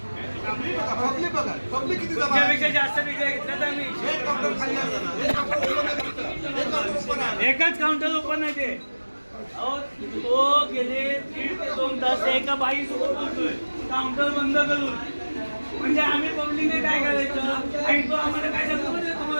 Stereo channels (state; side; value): inverted; both; correlation -1.00